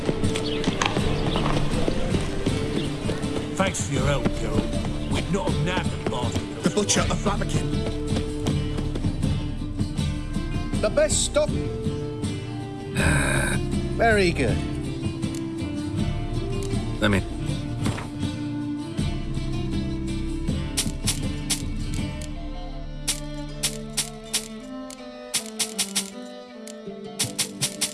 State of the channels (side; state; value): both; identical; correlation 1.00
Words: stop. Very good. Let me...